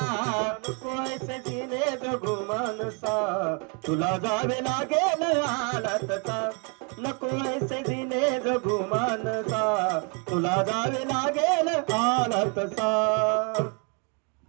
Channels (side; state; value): left; quieter; 35.4 dB